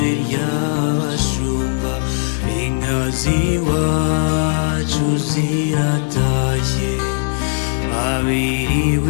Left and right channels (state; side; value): silent; right; 59 dB below the other